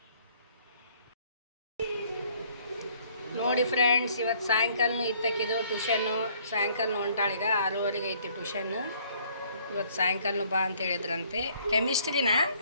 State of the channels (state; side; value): inverted; both; correlation -0.61